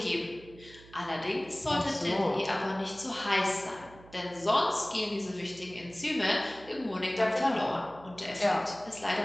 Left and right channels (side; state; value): right; noise; hum, 21 dB below the sound